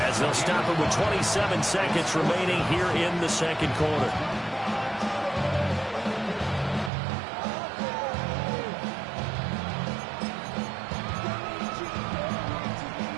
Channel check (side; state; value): left; drops out; at 6.9 s